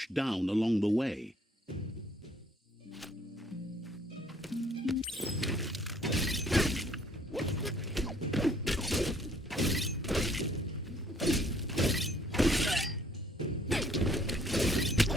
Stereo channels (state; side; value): normal; both; correlation 0.61